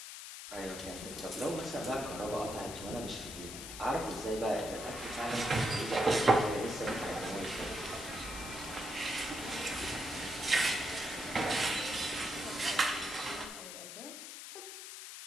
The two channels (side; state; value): left; noise; hiss, 10 dB below the sound